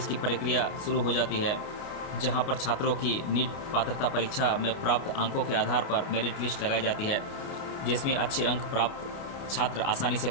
की प्रक्रिया शुरू हो जाती है, जहां पर छात्रों की नीट पात्रता परीक्षा में प्राप्त अंकों के आधार पर मेरिट लिस्ट लगाई जाती है, जिसमें अच्छे अंक प्राप्त छात्र आसानी से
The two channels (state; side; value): late; right; 29 ms